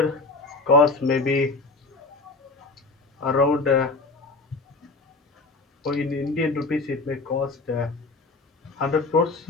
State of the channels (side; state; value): right; quieter; 3.5 dB